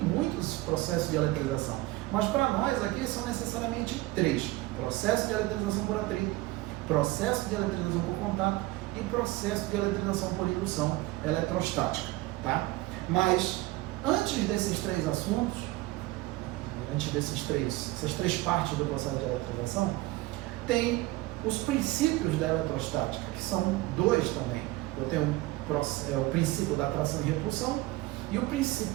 processos de eletrização. Mas para nós aqui são necessariamente 3. Processo de eletrização por atrito, processo de eletrização por contato e processo de eletrização por indução eletrostática, tá? Mas antes desses três assuntos, essas três partes do processo de eletrização, tem os princípios da eletrostática, que são dois também. Eu tenho o princípio da atração e repulsão e o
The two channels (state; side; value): quieter; left; 19.3 dB